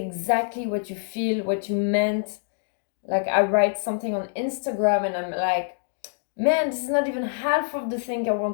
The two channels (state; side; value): silent; right; digital silence